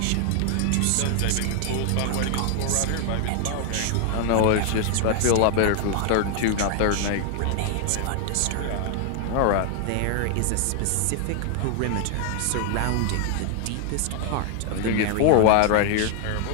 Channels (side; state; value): both; different; correlation 0.00